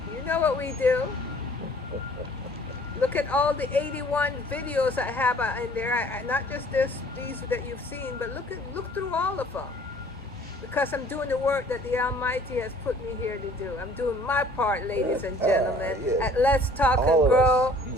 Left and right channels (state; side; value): normal; both; correlation 0.54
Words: you know what we do. Look at all the 81 videos I have in there. Not just these that you've seen, but look through all of them. Because I'm doing the work that the Almighty has put me here to do. I'm doing my part, ladies and gentlemen, at Let's Talk and Grow